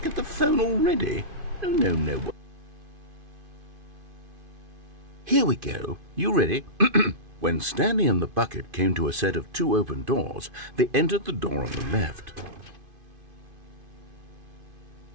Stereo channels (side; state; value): left; late; 2.5 ms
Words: at the phone already? No. Here we go. You ready? When Stanley and the bucket came to a set of 2 open doors, they entered the door on the left.